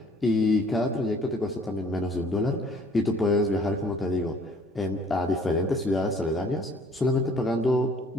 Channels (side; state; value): both; normal; correlation 0.56